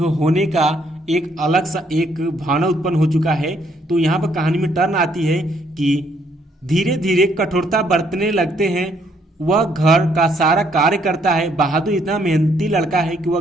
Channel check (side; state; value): both; normal; correlation 0.69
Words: का एक अलग सा एक भावना उत्पन्न हो चुका है। तो यहाँ पर कहानी में टर्न आती है कि धीरे धीरे कठोरता बरतने लगते हैं। वह घर का सारा कार्य करता है। बहादुर इतना मेहनती लड़का है कि वह